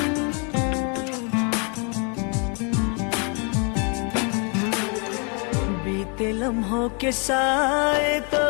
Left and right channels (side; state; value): right; quieter; 36.3 dB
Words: लम्हों के साए तो